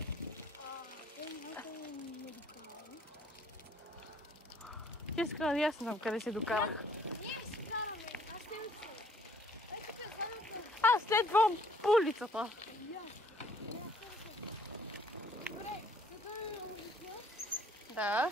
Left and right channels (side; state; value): both; normal; correlation 0.61